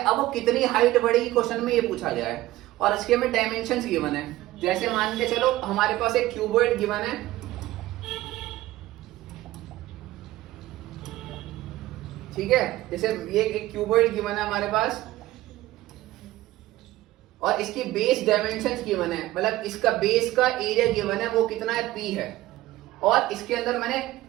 वो कितनी हाइट बढ़ेगी क्वेश्चन में ये पूछा गया है और इसके में डायमेंशंस गिवन है। जैसे मान के चलो हमारे पास एक क्यूबॉइड गिवन है, ठीक है, जैसे ये एक क्यूबॉइड गिवन है हमारे पास और इसकी बेस डायमेंशंस गिवन है, मतलब इसका बेस का एरिया गिवन है वो कितना है, पी है। और इसके अंदर मैंने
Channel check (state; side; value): quieter; left; 16.5 dB